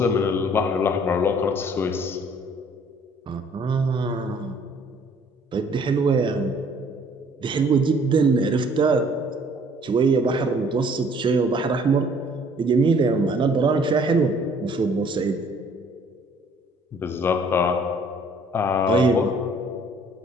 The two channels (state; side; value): normal; both; correlation 0.58